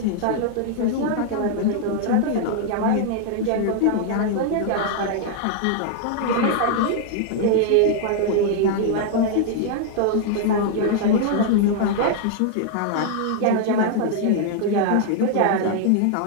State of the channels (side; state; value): both; different; correlation 0.00